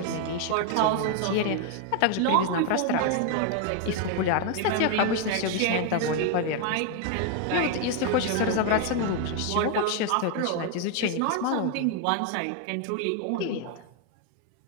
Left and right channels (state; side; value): different; both; correlation 0.01